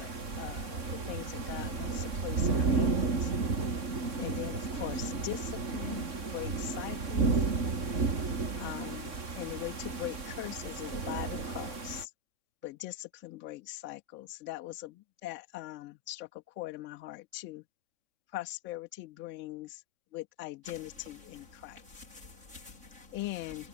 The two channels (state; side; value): late; left; 3.6 ms